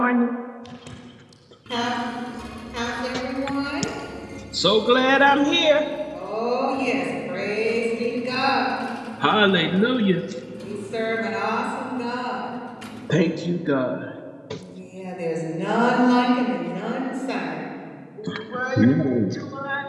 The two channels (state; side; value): identical; both; correlation 1.00